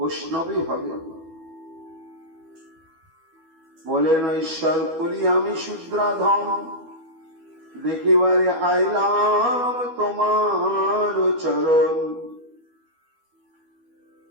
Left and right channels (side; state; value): left; late; 12 ms